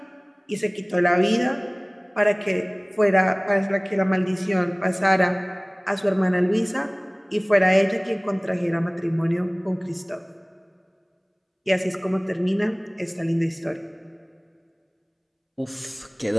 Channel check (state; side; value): identical; both; correlation 1.00